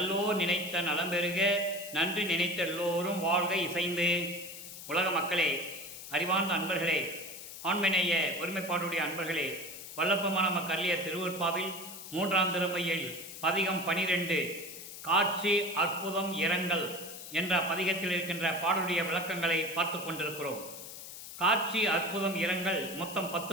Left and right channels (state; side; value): noise; left; hiss, 12 dB below the sound